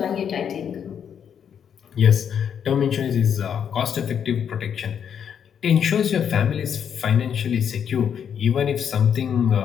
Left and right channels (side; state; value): right; quieter; 8.1 dB